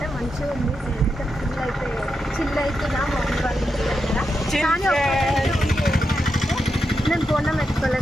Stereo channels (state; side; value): normal; both; correlation 0.86